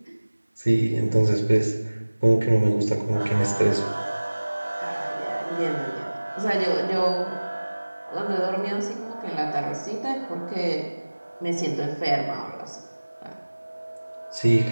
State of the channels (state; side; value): inverted; both; correlation -1.00